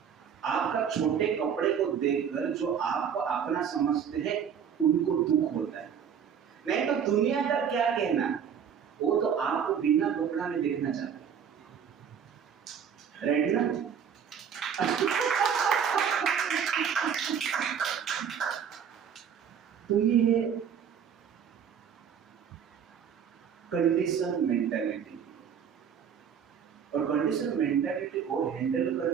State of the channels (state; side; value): quieter; left; 7.7 dB